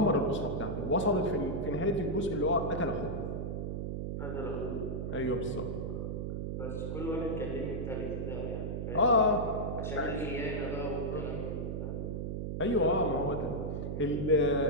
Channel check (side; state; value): right; noise; hum, 3 dB below the sound